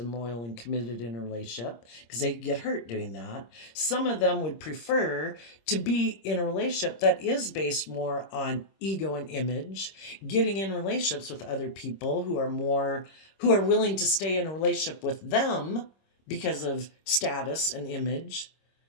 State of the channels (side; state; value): right; late; 26 ms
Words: loyal and committed in a relationship, because they get hurt doing that, some of them would prefer to be in a relationship that is based more on ego and image, getting in relationships with other people who are willing to stay in a relationship with them because of status and image.